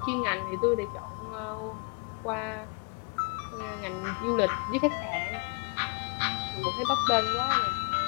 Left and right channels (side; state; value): right; quieter; 34.5 dB